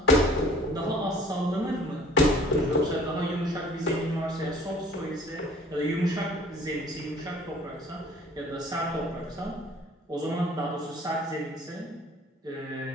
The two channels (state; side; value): normal; both; correlation 0.52